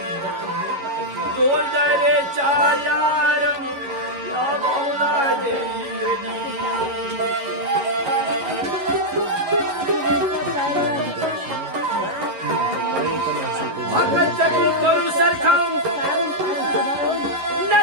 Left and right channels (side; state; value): left; late; 11 ms